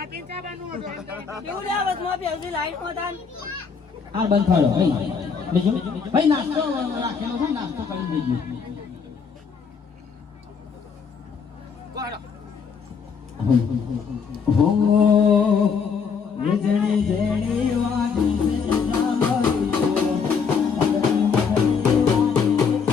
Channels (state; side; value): quieter; right; 5.9 dB